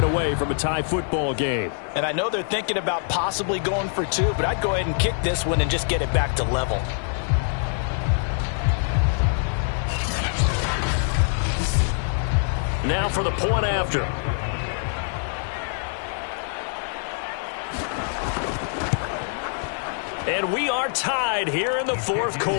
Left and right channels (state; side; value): silent; right; 62 dB below the other